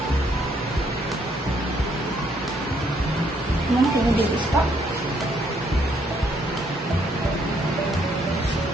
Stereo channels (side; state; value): both; normal; correlation 0.70